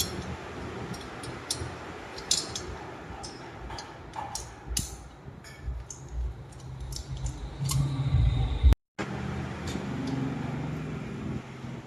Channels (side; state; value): both; identical; correlation 1.00